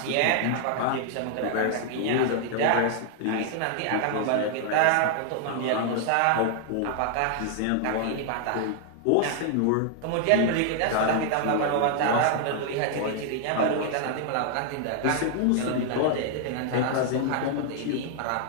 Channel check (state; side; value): different; both; correlation 0.00